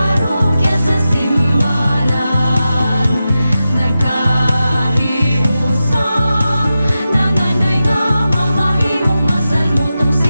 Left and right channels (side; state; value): both; inverted; correlation -0.91